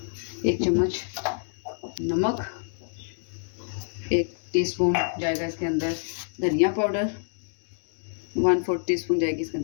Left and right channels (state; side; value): silent; right; digital silence